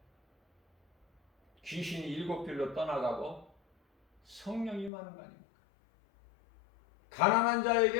귀신이 일곱 길로 떠나가고 성령이 임하는 거 아닙니까? 가난한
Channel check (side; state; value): right; drops out; at 4.9 s